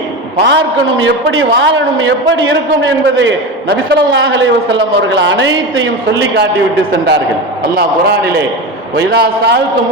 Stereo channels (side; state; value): both; normal; correlation 0.23